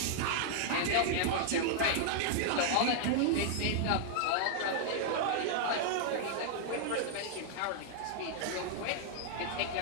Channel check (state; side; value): different; both; correlation -0.01